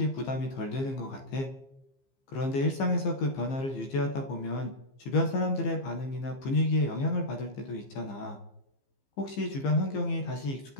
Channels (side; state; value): right; late; 15 ms